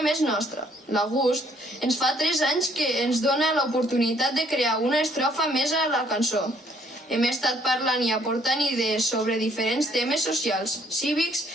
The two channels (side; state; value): both; normal; correlation 0.64